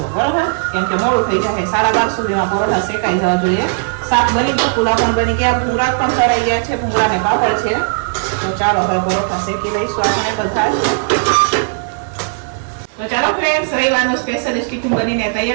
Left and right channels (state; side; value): silent; left; digital silence